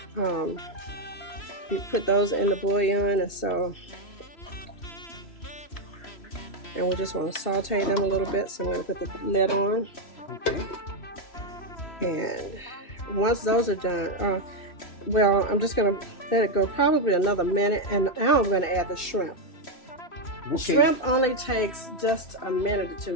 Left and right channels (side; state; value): right; late; 2.6 ms